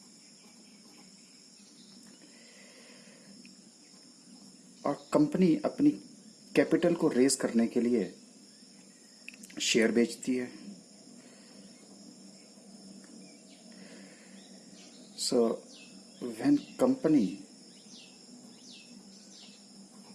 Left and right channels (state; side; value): identical; both; correlation 1.00